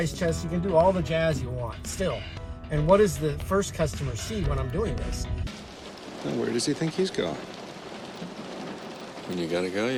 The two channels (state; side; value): identical; both; correlation 1.00